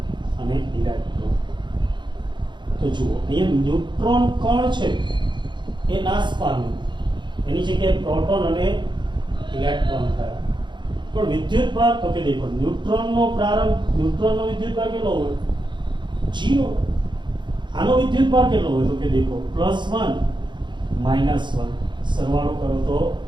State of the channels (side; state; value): left; late; 0.22 ms